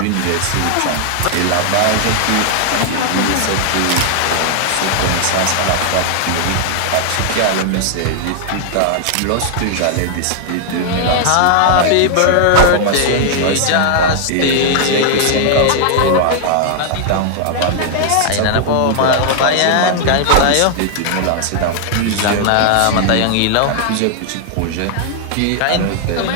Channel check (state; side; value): different; both; correlation 0.00